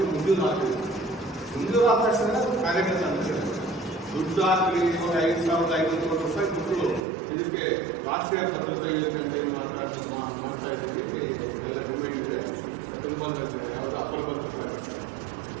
ಮುಂಜೂರು ಆಗ್ತದೆ. ಮುಂಜೂರು ಆದ ತಕ್ಷಣ ಕಾರ್ಯಕರ್ತ ಅಂತ ದುಡ್ಡು ಹಾಕಿ ಇವಾಗ 5,500 ಕೋಟಿ ರೂಪಾಯಿ ಕೊಟ್ಟು ಇದಕ್ಕೆ ರಾಷ್ಟ್ರೀಯ ಭದ್ರತಾ ಯೋಜನೆ ಅಂತ ಏನು ಮಾಡ್ತಾ ಇದ್ದೀವಿ. ಎಲ್ಲ ಡಿಮ್ಯಾಂಡ್ ಇದೆ. ತುಂಬ ಯಾವುದು ಅಪರ ಭದ್ರತಾ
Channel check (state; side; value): drops out; left; at 7.1 s